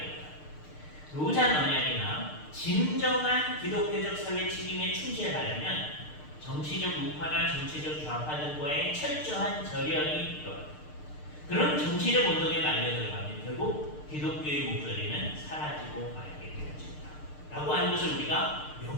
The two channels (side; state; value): right; late; 6.6 ms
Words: 로잔 언약이나 진정한 기독교적 사회 책임에 충실하려면 정치적 우파나 정치적 좌파 등과의 철저한 절연이 필요합니다. 그런 정치적 운동에 말려 들어가면 결국 기독교의 목소리는 사라지고 말게 되어진다 라고 하는 것을 우리가